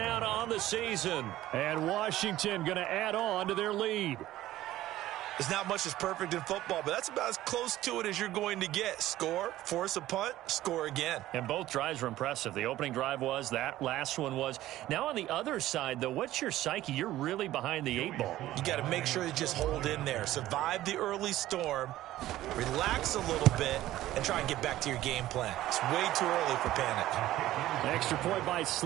on the season. And Washington going to add on to their lead. There's not much that's perfect in football, but that's about as close to it as you're going to get. Score, force a punt, score again. And both drives were impressive. The opening drive was, that last one was. Now on the other side, though, what's your psyche? You're really behind the 8 ball. You got to make sure you just hold in there. Survive the early storm, relax a little bit, and try and get back to your game plan. It's way too early for panic. The extra point by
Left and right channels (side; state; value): left; quieter; 14.8 dB